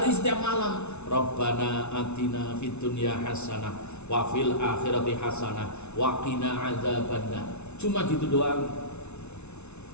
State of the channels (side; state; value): right; late; 0.81 ms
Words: setiap malam. Rabbana atina fid dunya hasanah wa fil akhirati hasanah wa qina adzabannar. Cuma gitu doang.